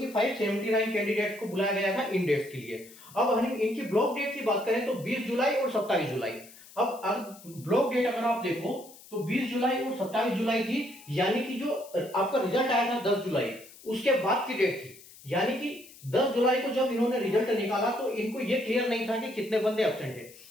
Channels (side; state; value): left; noise; hiss, 21 dB below the sound